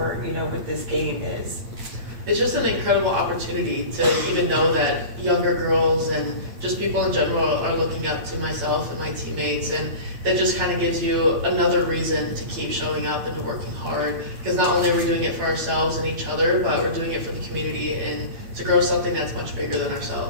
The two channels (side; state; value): left; late; 8.8 ms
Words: what this game is? It's just an incredible opportunity to even know that younger girls and just people in general are looking up to myself and my teammates, and that just kind of gives you another reason to keep showing up and working hard, because not only are we doing it for ourselves and each other, but we're doing it for the community and to grow something that's much bigger than